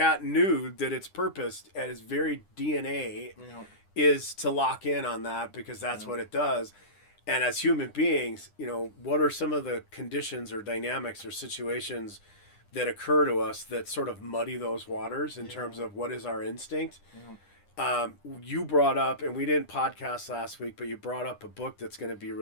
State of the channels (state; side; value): late; right; 9.9 ms